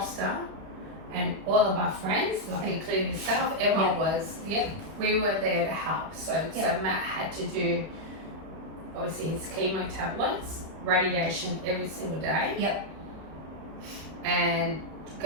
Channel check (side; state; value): left; late; 31 ms